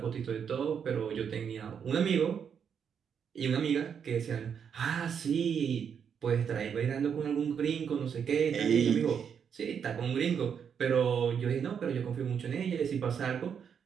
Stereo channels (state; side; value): quieter; left; 7.4 dB